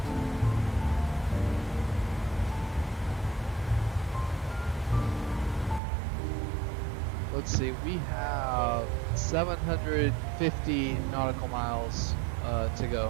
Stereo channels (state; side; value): drops out; left; at 5.8 s